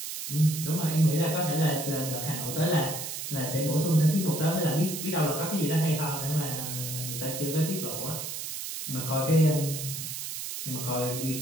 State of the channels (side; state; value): right; noise; hiss, 6 dB below the sound